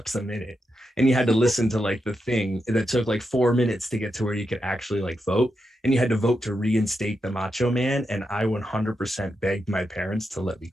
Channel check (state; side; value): normal; both; correlation 0.86